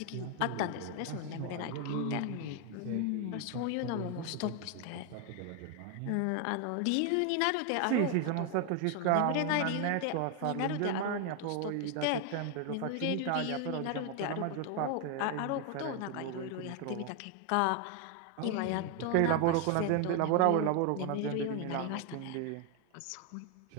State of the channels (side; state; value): both; different; correlation 0.01